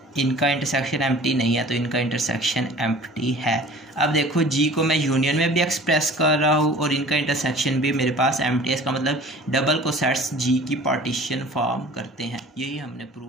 इनका इंटरसेक्शन एम्प्टी नहीं है, तो इनका इंटरसेक्शन एम्प्टी है। अब देखो जी को मैं यूनियन में भी एक्सप्रेस कर रहा हूँ और इनका इंटरसेक्शन भी मेरे पास एम्प्टी है। इसका मतलब डबल कोसेट्स जी की पार्टीशन फॉर्म करते हैं। यही हमने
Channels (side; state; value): both; normal; correlation 0.45